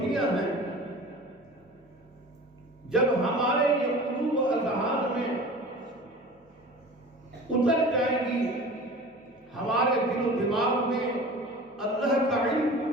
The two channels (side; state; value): both; normal; correlation 0.39